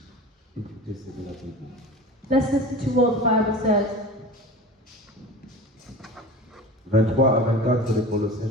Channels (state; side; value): normal; both; correlation 0.35